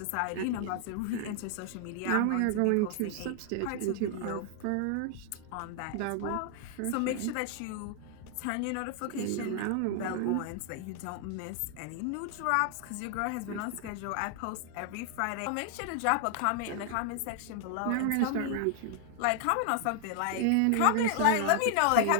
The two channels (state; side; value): different; both; correlation 0.00